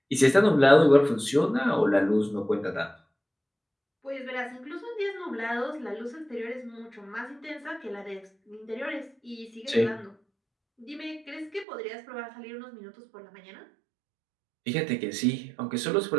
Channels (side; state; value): left; drops out; at 11.7 s